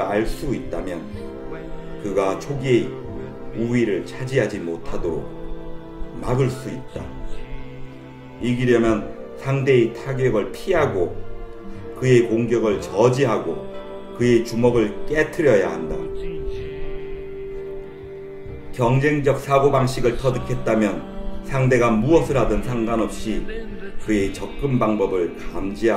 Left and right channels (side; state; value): both; identical; correlation 1.00